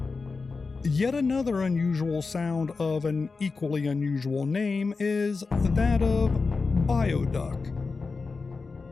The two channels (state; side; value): quieter; right; 4.3 dB